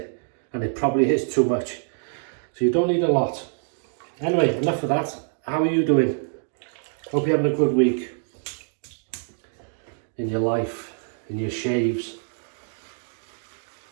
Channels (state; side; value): silent; left; 61 dB below the other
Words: and it probably is too much. So you don't need a lot. Anyway, enough of that. How are you doing? Hope you're having a good week in your life, in your shaves.